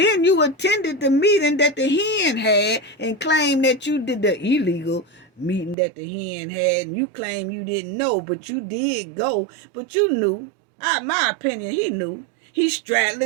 you attended the meeting that the hen had and claimed that you did the illegal meeting that the hen had. And you claim you didn't know, but you did go. But you knew. My opinion, he knew. He's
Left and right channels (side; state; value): left; drops out; at 5.8 s